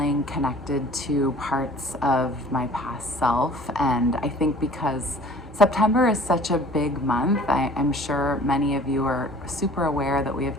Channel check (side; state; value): both; normal; correlation 0.49